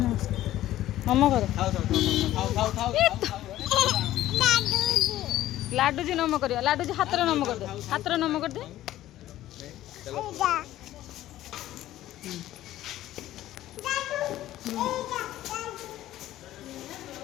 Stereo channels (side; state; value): right; quieter; 14.1 dB